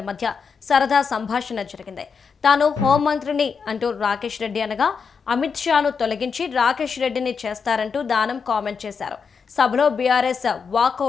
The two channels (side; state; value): right; quieter; 5.7 dB